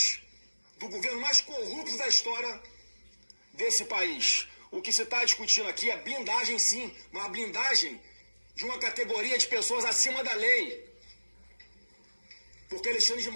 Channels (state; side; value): inverted; both; correlation -1.00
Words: do governo mais corrupto da história desse país. O que se está discutindo aqui é blindagem, sim, uma blindagem de uma categoria de pessoas acima da lei. Porque Alexandre de